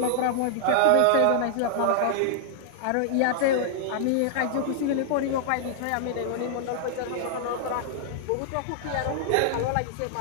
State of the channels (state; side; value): different; both; correlation -0.01